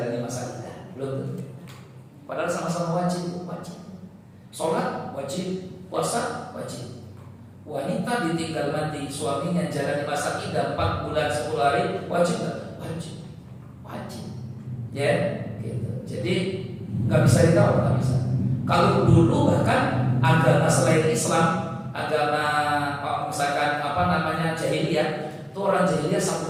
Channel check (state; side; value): identical; both; correlation 1.00